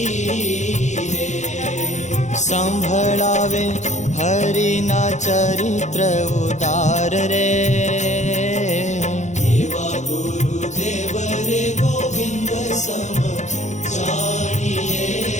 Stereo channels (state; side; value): late; right; 0.34 ms